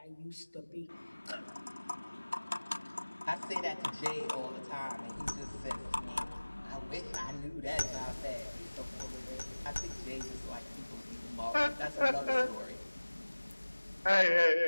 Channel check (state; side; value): inverted; both; correlation -1.00